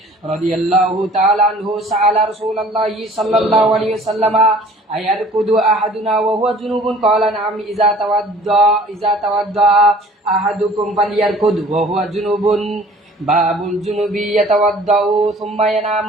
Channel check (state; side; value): normal; both; correlation 0.50